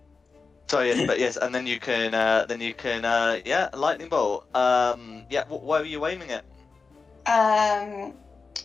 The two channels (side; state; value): right; quieter; 4.5 dB